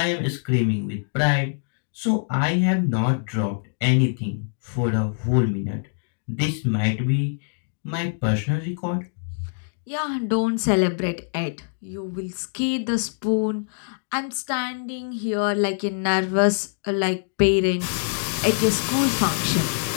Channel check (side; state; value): right; silent; digital silence